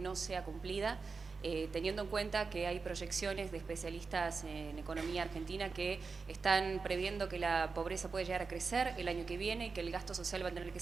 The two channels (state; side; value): quieter; left; 4.7 dB